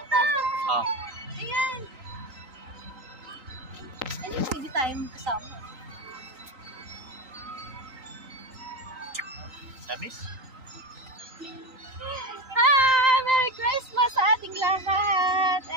Oh. Ayan. Ay, pwede tayo magkasama. Sabis? Merry Christmas sa ating lahat.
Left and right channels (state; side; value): late; left; 3.9 ms